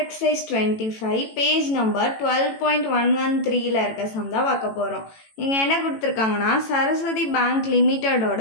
exercise 25 page number 12.113 ல இருக்க சம் தான் பார்க்க போறோம். இங்க என்ன கொடுத்திருக்காங்கன்னா சரஸ்வதி பேங்க்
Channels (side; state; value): right; late; 18 ms